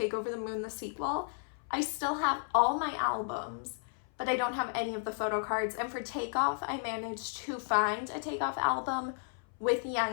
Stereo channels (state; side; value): silent; right; 55 dB below the other